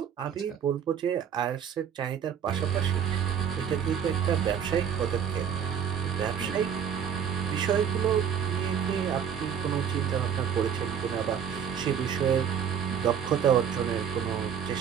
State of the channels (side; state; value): left; quieter; 8.2 dB